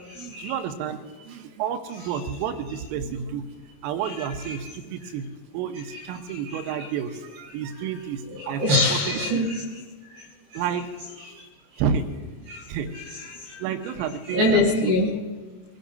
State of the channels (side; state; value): left; late; 27 ms